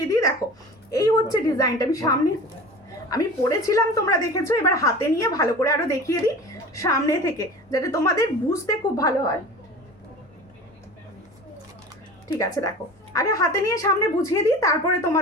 দিই। দেখো এই হচ্ছে ডিজাইনটা, আমি পরেছিলাম তোমরা দেখেছো, এবার হাতে নিয়ে ভালো করে আরো দেখিয়ে দিই সামনে থেকে, যাতে তোমাদের বুঝতে খুব ভালো হয়। ঠিক আছে দেখো, আগে হাতে নিয়ে সামনে বুঝিয়ে দিই, তারপরে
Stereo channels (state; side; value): normal; both; correlation 0.37